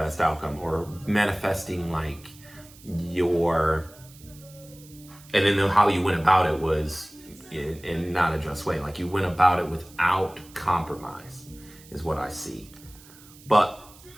outcome, or manifesting like and then how you went about it was in not a just way. Like you went about it without compromise is what I see. But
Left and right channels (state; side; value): noise; right; hiss, 23 dB below the sound